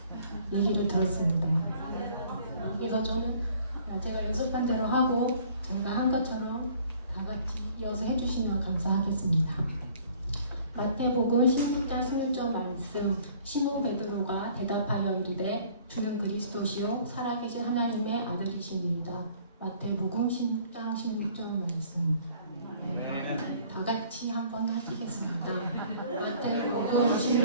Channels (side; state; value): both; inverted; correlation -0.55